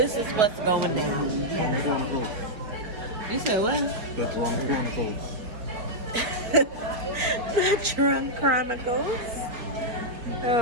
is what's going on. You said what? The Drunk Chronicles. The Drunk Chronicles.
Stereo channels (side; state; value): left; late; 4.7 ms